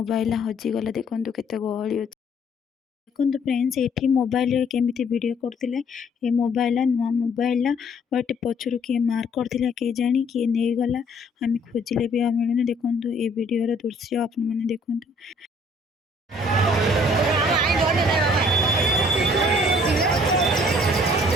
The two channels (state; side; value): normal; both; correlation 0.60